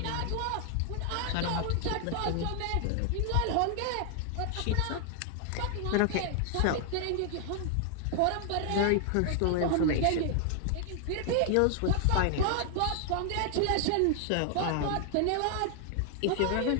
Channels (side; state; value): both; different; correlation 0.00